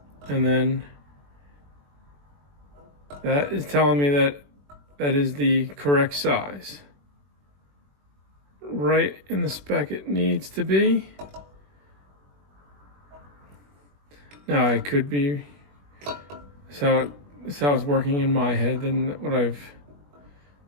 and then that is telling me that is the correct size. Right in the spec it needs to be. Now I could be, that's how it's working in my head, and what I've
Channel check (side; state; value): left; late; 21 ms